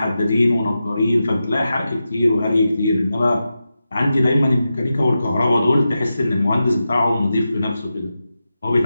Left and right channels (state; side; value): inverted; both; correlation -0.91